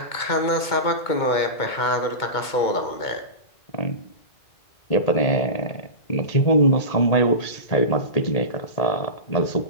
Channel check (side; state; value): right; late; 2.2 ms